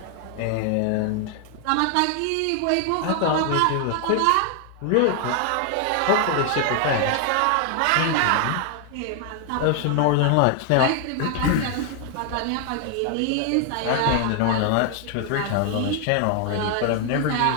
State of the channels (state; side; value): different; both; correlation 0.00